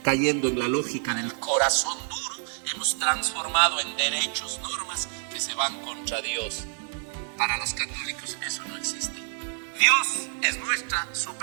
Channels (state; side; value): silent; left; 60 dB below the other